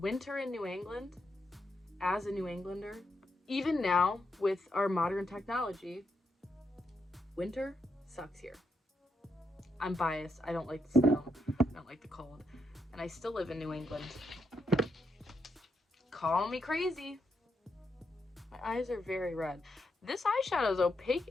in New England, as a New Englander, even now with our modern technology, winter sucks here. I'm biased. I don't like the snow. I don't like the cold. And I still live in New England. Call me crazy. My eyes are very red. This eyeshadow is opaque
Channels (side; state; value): both; normal; correlation 0.81